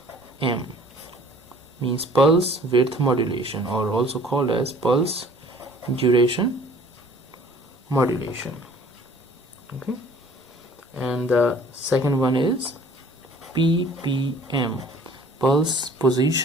means pulse width modulation, or also called as pulse duration modulation. Okay, and the second one is PPM, pulse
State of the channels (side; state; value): both; normal; correlation 0.52